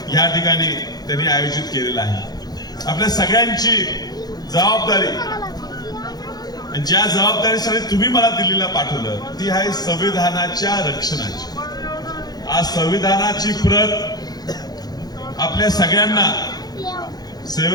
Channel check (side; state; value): right; late; 0.19 ms